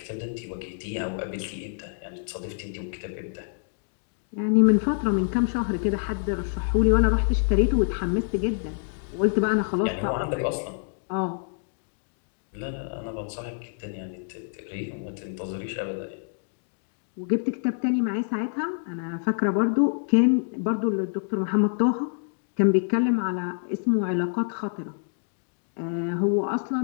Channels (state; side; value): silent; right; digital silence